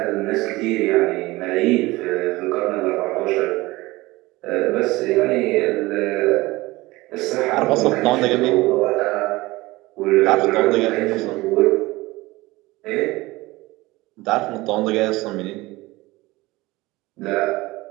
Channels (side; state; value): left; quieter; 20.3 dB